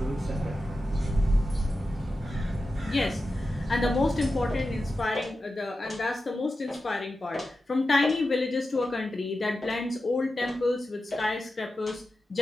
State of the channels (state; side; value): normal; both; correlation 0.92